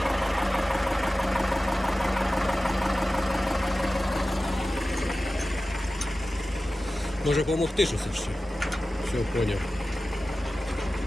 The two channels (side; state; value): both; normal; correlation 0.95